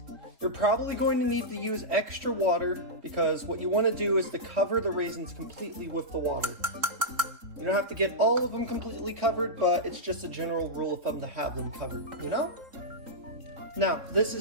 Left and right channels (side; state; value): left; late; 3.8 ms